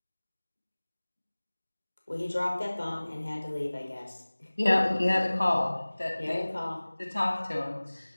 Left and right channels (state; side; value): inverted; both; correlation -1.00